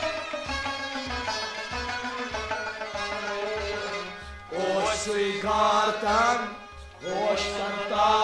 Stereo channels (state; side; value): identical; both; correlation 1.00